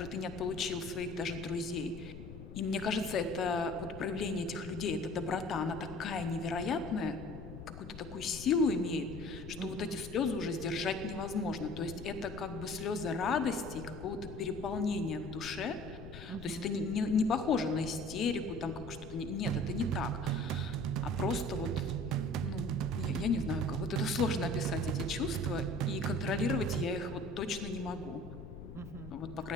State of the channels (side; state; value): left; noise; rumble, 12 dB below the sound